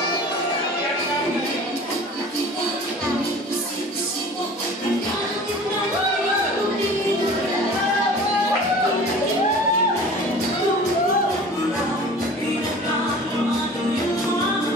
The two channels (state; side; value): normal; both; correlation 0.43